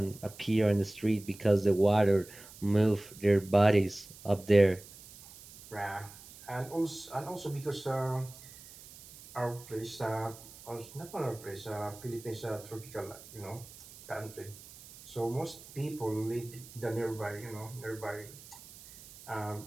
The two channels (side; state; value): right; noise; hiss, 19 dB below the sound